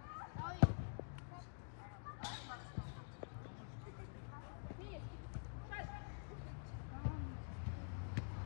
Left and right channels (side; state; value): right; silent; digital silence